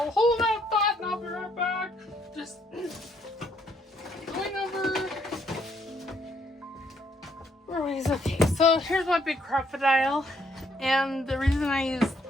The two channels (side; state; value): both; normal; correlation 0.71